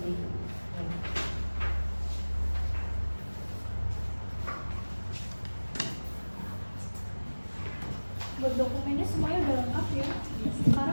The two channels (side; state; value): both; inverted; correlation -1.00